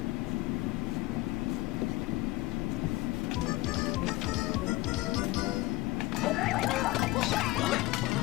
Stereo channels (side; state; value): right; quieter; 19.3 dB